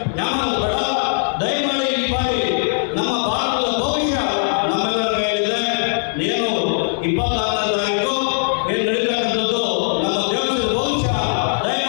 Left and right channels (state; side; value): silent; right; digital silence